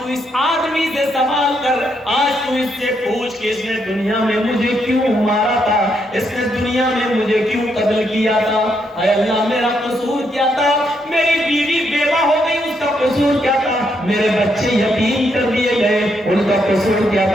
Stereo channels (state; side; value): normal; both; correlation 0.77